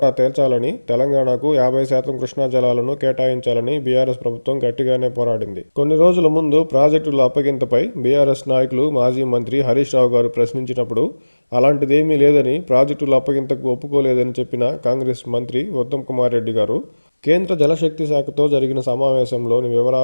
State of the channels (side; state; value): both; inverted; correlation -1.00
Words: తేల్చాలని, తెలంగాణకు 50% కృష్ణా జలాలను కేటాయించాలని బీఆర్ఎస్ ప్రభుత్వం గట్టిగానే పోరాడింది. కొన్ని రోజుల ముందు ప్రాజెక్టుల అప్పగింతపై బీఆర్ఎస్ నాయకులు మాజీ మంత్రి హరీష్ రావు గారు ప్రశ్నించినప్పుడు అలాంటిదేమీ లేదని, ప్రాజెక్టుల అప్పగింతకు ఒప్పుకోలేదని చెప్పిన కాంగ్రెస్ మంత్రి ఉత్తమ్ కుమార్ రెడ్డి గారు కేంద్ర జలశక్తి శాఖతో జరిగిన సమావేశంలోని